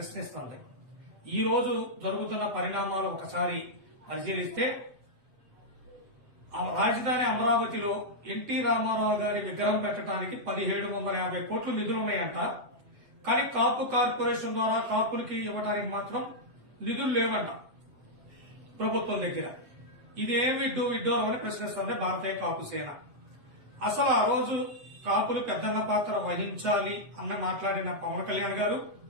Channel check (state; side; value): late; left; 8.1 ms